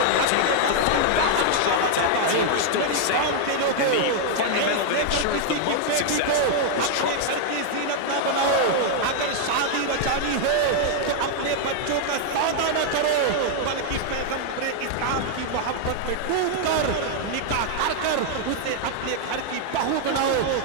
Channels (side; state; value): both; different; correlation 0.00